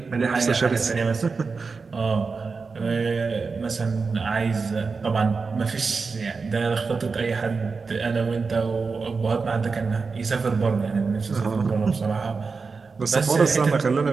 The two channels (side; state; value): left; quieter; 4.7 dB